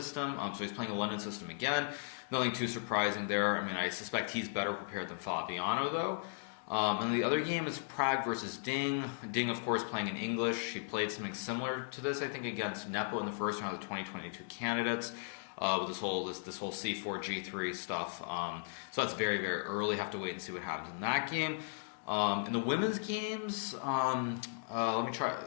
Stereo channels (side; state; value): right; silent; digital silence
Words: so he's playing a London system again. Nothing too surprising there. I mean, I suspect he's better prepared than Fabiano, though. And the other game is Prague versus Ding. Ding, of course, playing in English. He played something similar to this, I think, against Nepo in the first round of the 2022 candidates, with this whole C4, G3 stuff. So that's very, very early. Have to wait and see what happens in that game. In the women's games, let me try